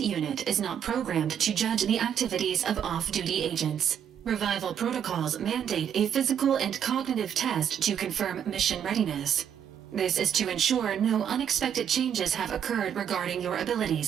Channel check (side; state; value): left; quieter; 8.8 dB